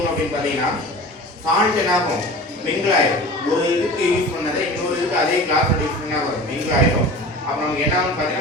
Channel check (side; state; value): both; normal; correlation 0.37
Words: அப்படின்னு பாத்தீங்கன்னா சால்ட் என்ன ஆகும், மிங்கிள் ஆயிடும். ஒரு இதுக்கு யூஸ் பண்ணதை இன்னொரு இதுக்கு அதே கிளாஸ் யூஸ் பண்ணா வரும், மிங்கிள் ஆயிடும். அப்ப நமக்கு என்ன ஆகும்